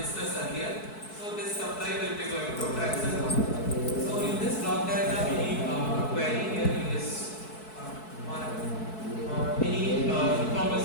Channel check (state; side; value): late; right; 4.6 ms